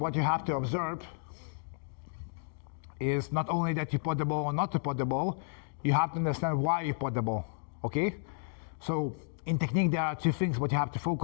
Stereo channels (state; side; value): silent; right; 56 dB below the other